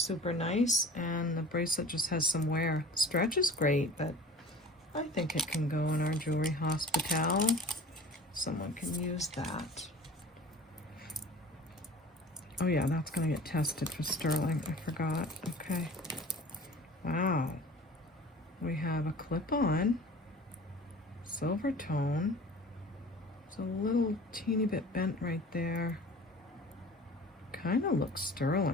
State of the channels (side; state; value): both; normal; correlation 0.43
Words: nice and the bracelet just has some wear. Stretch is great, but I think it can go in our jewelry hospital. Someone can use that. Oh yeah, that's gonna get tested for sterling. I forgot. Okay. Wow. We have a clip-on, silver tone. It's a little teeny bit bent right there. Kind of looks